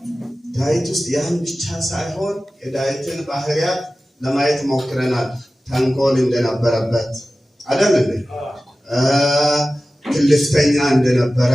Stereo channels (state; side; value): normal; both; correlation 0.96